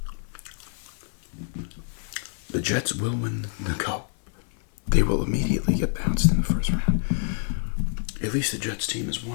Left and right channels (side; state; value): right; silent; digital silence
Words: The Jets will win the Cup. They will immediately get bounced in the first round. At least the Jets team has